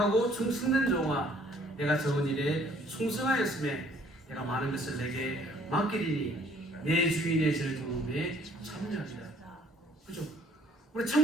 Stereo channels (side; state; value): both; normal; correlation 0.60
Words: 충성된 종아 내가 적은 일에 충성하였음에 내가 많은 것을 내게 맡기리니 내 주인의 절 도움에 참여하리라. 그렇죠? 우리